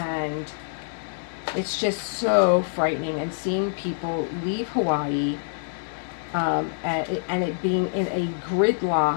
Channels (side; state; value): right; silent; digital silence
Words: it's just so frightening. And seeing people leave Hawaii and it being in a